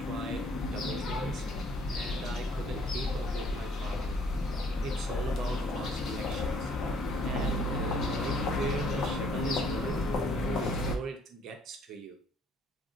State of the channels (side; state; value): both; normal; correlation 0.62